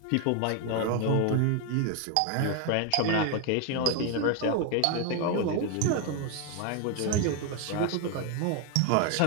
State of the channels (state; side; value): different; both; correlation 0.01